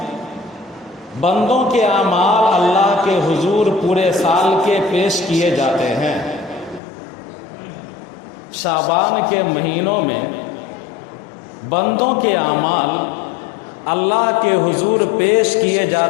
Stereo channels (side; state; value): right; drops out; at 6.8 s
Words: بندوں کے اعمال اللہ کے حضور پورے سال کے پیش کیے جاتے ہیں۔ شعبان کے مہینوں میں بندوں کے اعمال اللہ کے حضور پیش کیے